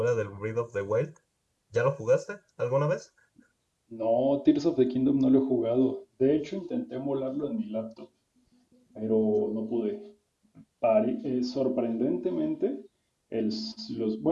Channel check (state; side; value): identical; both; correlation 1.00